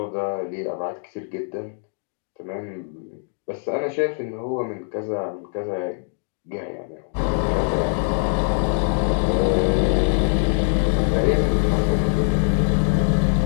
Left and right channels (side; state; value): right; silent; digital silence